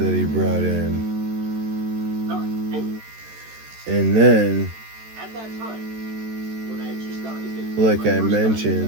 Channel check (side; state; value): left; late; 13 ms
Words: he brought in. And then, like I